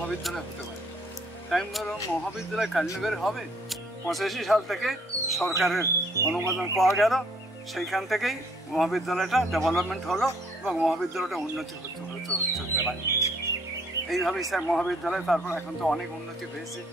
হতে পারে। তাই আমি বললাম, মহাবিদ্যালয় কালীনগরে হবে? 85 সাল থেকে সরকারের অনুমোদন পাওয়া গেল, সেইখান থেকেই মহাবিদ্যালয়টা ডেভেলপমেন্ট হলো এবং মহাবিদ্যালয়টা উন্নতি হতে পারে। এইভাবেই স্যার মহাবিদ্যালয়, তারপর এখন তো অনেক উন্নতি হয়েছে,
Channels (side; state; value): both; normal; correlation 0.63